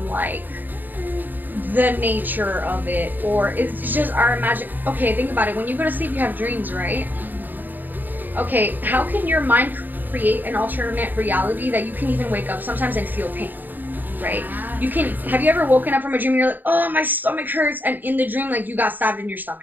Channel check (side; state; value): left; late; 0.089 ms